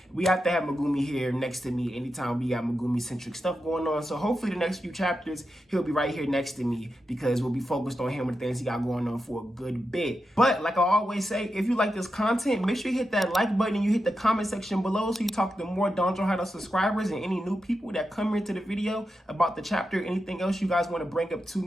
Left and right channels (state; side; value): normal; both; correlation 0.88